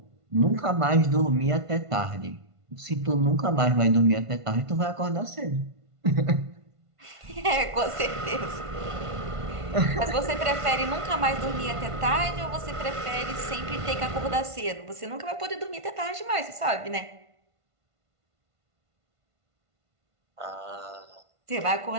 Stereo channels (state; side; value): late; left; 1.5 ms